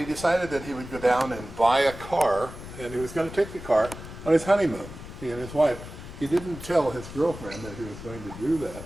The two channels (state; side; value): noise; left; rumble, 13 dB below the sound